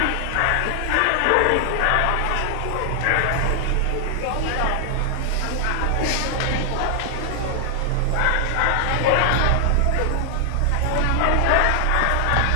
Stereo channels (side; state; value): both; different; correlation 0.00